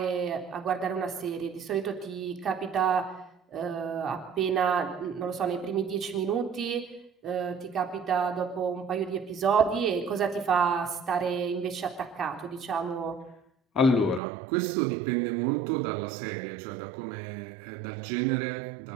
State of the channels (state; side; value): drops out; left; at 14.2 s